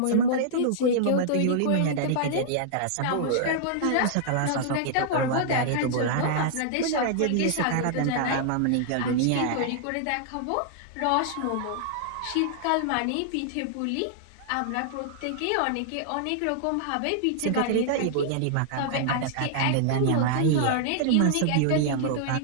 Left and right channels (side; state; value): both; different; correlation -0.01